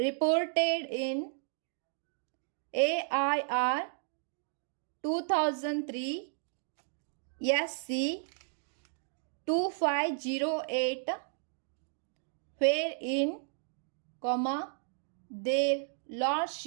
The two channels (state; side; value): silent; left; digital silence